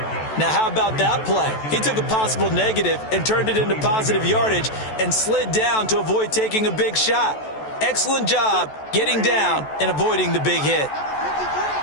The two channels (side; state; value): right; late; 14 ms